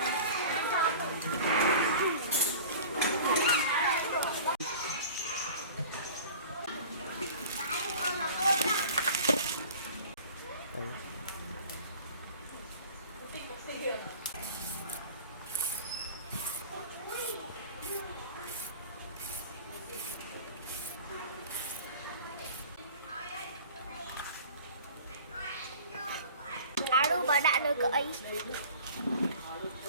Bà đã lời cởi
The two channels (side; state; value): both; inverted; correlation -0.42